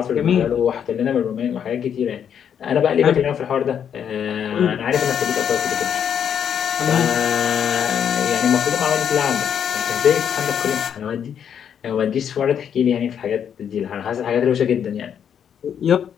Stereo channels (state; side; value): quieter; right; 8.4 dB